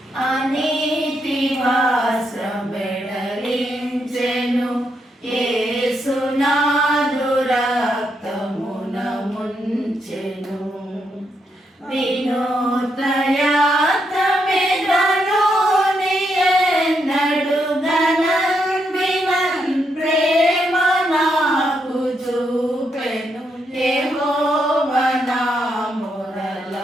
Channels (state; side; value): normal; both; correlation 0.79